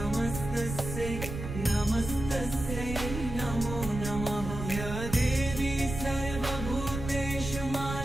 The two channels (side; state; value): right; noise; rumble, 7 dB below the sound